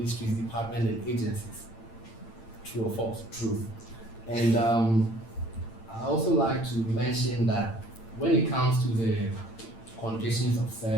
departments, and agencies. True or false? True. And I also like to mention that when it comes to the conditions of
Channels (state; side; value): late; right; 8.8 ms